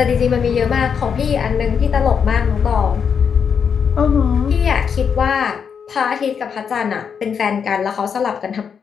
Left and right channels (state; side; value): quieter; right; 6.9 dB